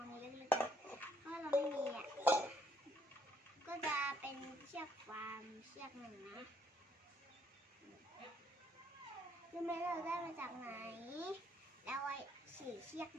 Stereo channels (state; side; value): normal; both; correlation 0.67